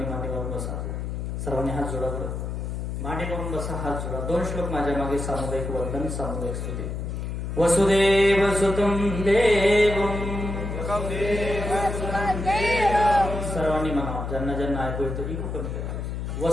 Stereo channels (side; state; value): left; noise; hum, 4 dB below the sound